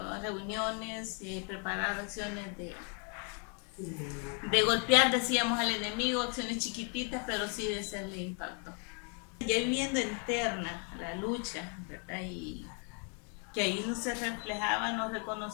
reuniones, preparar acciones de golpear, decíamos, al enemigo, acciones chiquititas, pero sí de hacerle impacto. Ya viviendo interna la lucha, ¿verdad? Y que ahí no se reflejaba, no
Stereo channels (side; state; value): right; quieter; 38.8 dB